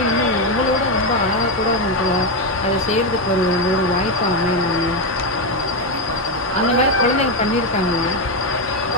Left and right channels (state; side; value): normal; both; correlation 0.08